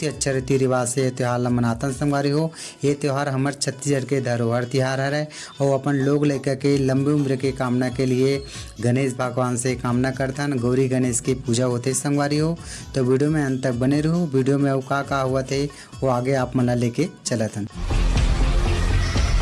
ही अच्छा रीति रिवाज से ये त्यौहार ला मनातन संगवारी हो। ये त्यौहार हमारे छत्तीसगढ़ के धरोहर तिहार है और अपन लोग लेकर के लंबी उम्र के कामना के लिए गणेश भगवान से कामना करतन। गौरी गणेश की पूजा होते संगवारी हो। तो वीडियो में अंत तक बने रहो। वीडियो में वो का हुआ थे वो आगे आप मना लेके चलतन।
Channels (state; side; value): identical; both; correlation 1.00